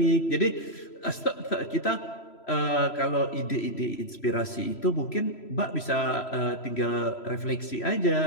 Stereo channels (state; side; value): late; right; 3.0 ms